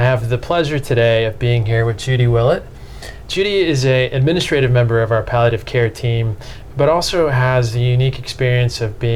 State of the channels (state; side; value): identical; both; correlation 1.00